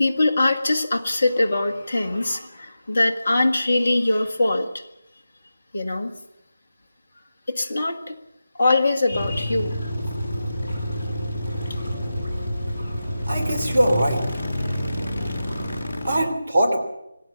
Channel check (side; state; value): both; inverted; correlation -0.92